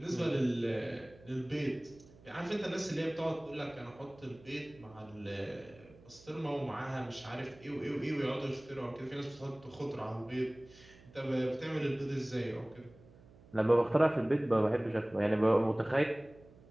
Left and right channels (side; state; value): right; noise; hum, 24 dB below the sound